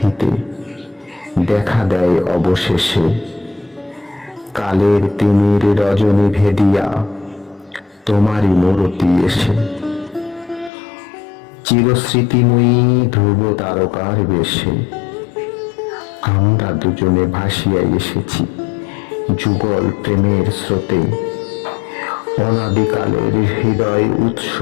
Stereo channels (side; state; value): right; drops out; at 10.7 s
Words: দেখা দেয় অবশেষে, কালের তিমির রজনী ভেদিয়া তোমারই মূরতি এসে। চিরস্মৃতিময়ী ধ্রুব তারকার বেশে আমরা দুজনে ভাসিয়া এসেছি যুগল প্রেমের স্রোতে। অনাদিকালের হৃদয় উৎস